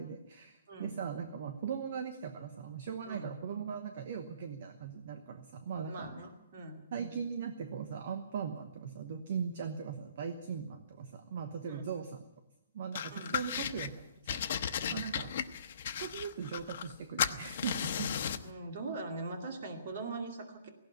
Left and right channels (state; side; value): inverted; both; correlation -0.55